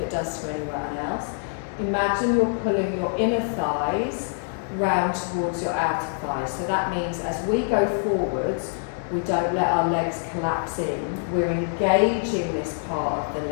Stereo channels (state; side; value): silent; right; digital silence